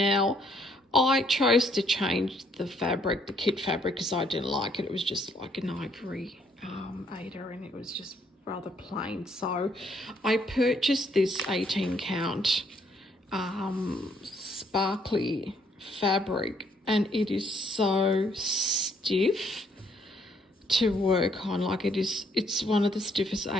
I chose to change the fabric, the kit fabric, because I didn't like it. It was just like an ivory Aida, and it was just rather plain. So I purchased this 18 count sparkly fabric, and it is so stiff to work on. Like, it's one of the stiffest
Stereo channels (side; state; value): both; normal; correlation 0.68